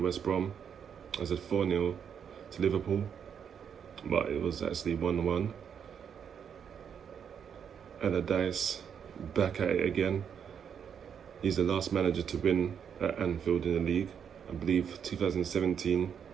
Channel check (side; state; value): left; quieter; 7.7 dB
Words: Brom. I said 4-0 to Liverpool, but it was actually 1-1. Allardyce back at it again. He's the last manager to win at Anfield in the league. I believe 2017,